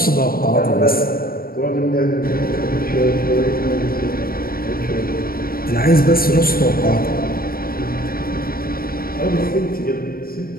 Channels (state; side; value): late; right; 0.43 ms